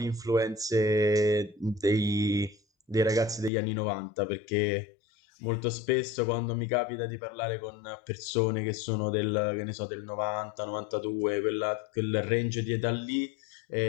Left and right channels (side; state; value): right; drops out; at 3.5 s